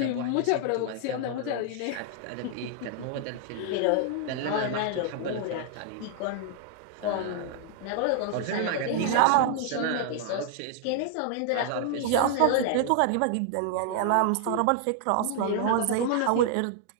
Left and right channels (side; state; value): both; different; correlation 0.00